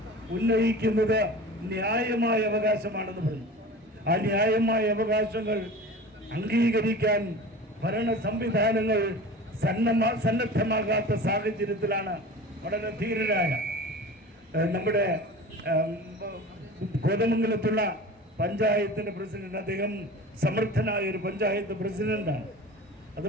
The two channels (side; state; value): both; normal; correlation 0.36